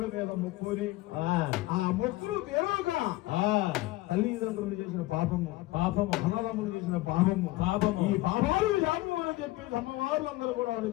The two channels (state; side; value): quieter; right; 18.7 dB